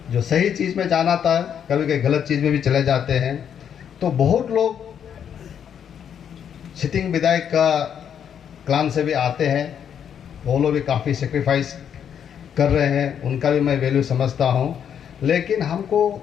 जो सही चीज़ में जाना था कभी कभी गलत चीज़ में भी चले जाते हैं। तो बहुत लोग सिटिंग विधायक का क्लान से भी आते हैं, वो लोग भी काफ़ी सेक्रीफाइस कर रहे हैं, उनका भी मैं वैल्यू समझता हूँ। लेकिन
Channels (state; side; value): quieter; right; 8.5 dB